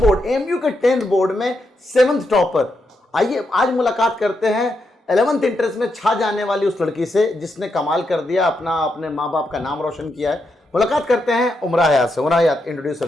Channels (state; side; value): normal; both; correlation 0.83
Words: एमयू के 10th बोर्ड में 7th टॉपर। आइए आज मुलाकात करते हैं 11th इंटरेस्ट में छा जाने वाली उस लड़की से जिसने कमाल कर दिया, अपने माँ बाप का नाम रोशन किया है। मुलाकात करते हैं उमरा हयात से। उमरा हयात, इंट्रोड्यूस